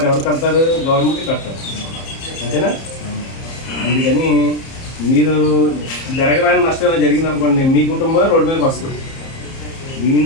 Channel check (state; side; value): late; right; 30 ms